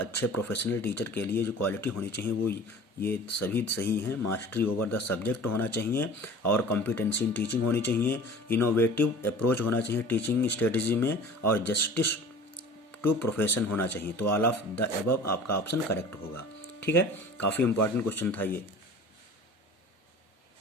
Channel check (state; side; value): normal; both; correlation 0.42